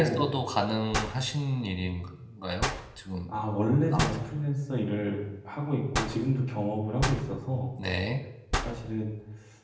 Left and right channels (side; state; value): both; identical; correlation 1.00